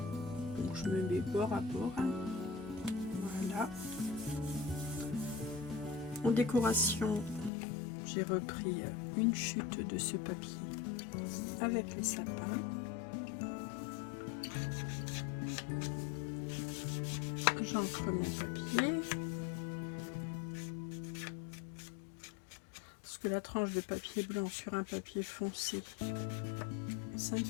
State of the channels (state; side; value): drops out; right; at 7.5 s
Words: Donc je me mets bord à bord. Voilà. En décoration, j'ai repris une chute de ce papier avec les sapins. J'encre mon papier. Parce que la tranche de papier blanc sur un papier foncé, ça ne